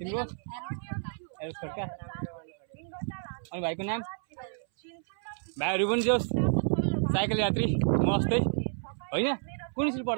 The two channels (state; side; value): silent; left; 57 dB below the other